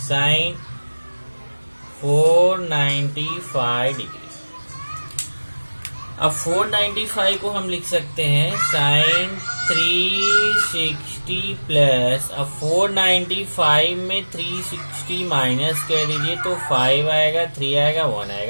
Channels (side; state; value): both; inverted; correlation -1.00